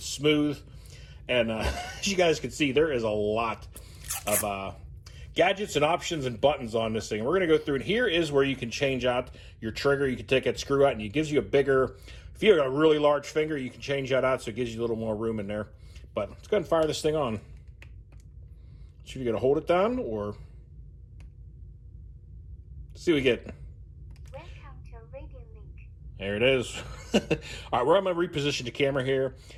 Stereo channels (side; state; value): both; identical; correlation 1.00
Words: smooth. And as you guys can see, there is a lot of gadgets and options and buttons on this thing. We're going to go through, and here is where you can change out your trigger. You can take that screw out, and it gives you a bigger, if you have a really large finger, you can change that out so it gives you a little more room in there. But let's go ahead and fire this thing on. So you're going to hold it down, or let's see what we get. Welcome to Radiolink. There it is. All right, I'm going to reposition the camera here, and